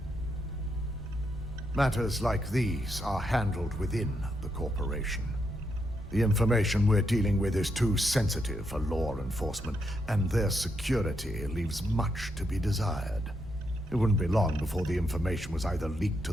Matters like these are handled within the corporation. The information we're dealing with is too sensitive for law enforcement, and their security leaves much to be desired. It wouldn't be long before the information was either leaked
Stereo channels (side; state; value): both; normal; correlation 0.80